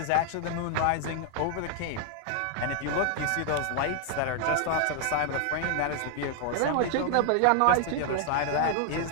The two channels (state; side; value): different; both; correlation 0.00